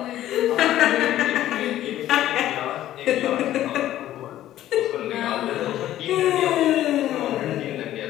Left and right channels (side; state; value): right; quieter; 13.1 dB